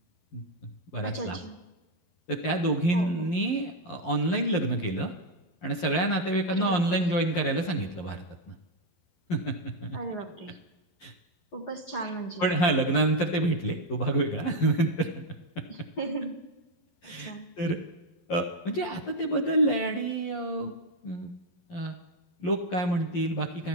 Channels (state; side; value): late; right; 11 ms